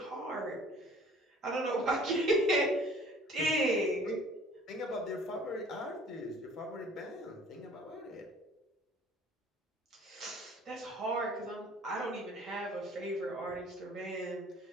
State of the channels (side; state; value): both; normal; correlation 0.52